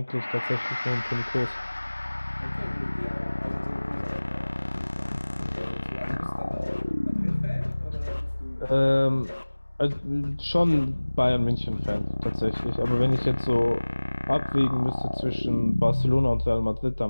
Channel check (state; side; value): inverted; both; correlation -1.00